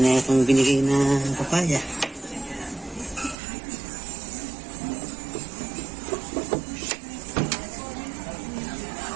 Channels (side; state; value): left; drops out; at 3.4 s